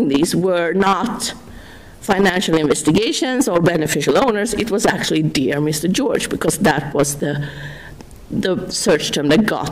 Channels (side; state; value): both; identical; correlation 1.00